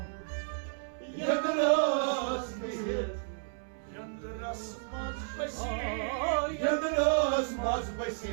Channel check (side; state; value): left; silent; 56 dB below the other